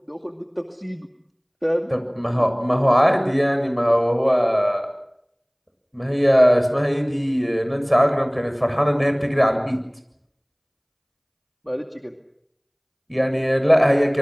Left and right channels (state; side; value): identical; both; correlation 1.00